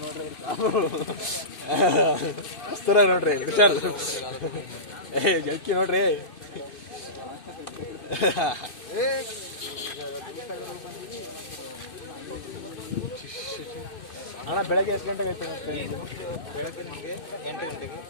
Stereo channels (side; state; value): right; late; 2.6 ms